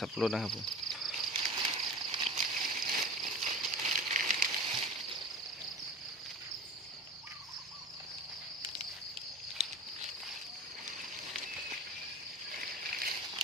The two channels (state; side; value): normal; both; correlation 0.34